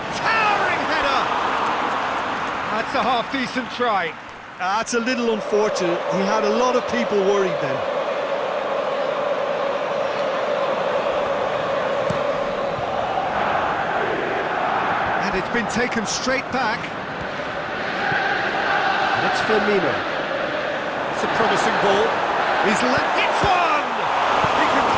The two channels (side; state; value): both; identical; correlation 1.00